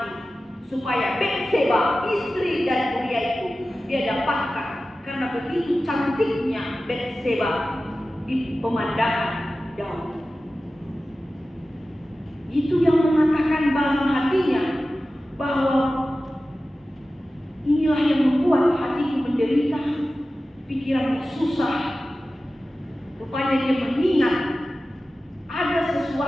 supaya Batseba, istri dari Uria itu dia dapatkan. Karena begitu cantiknya Batseba di pemandangan Daud. Itu yang mengatakan dalam hatinya bahwa inilah yang membuat hatiku menderita, pikirannya susah. Rupanya dia mengingat ada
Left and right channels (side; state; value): both; normal; correlation 0.95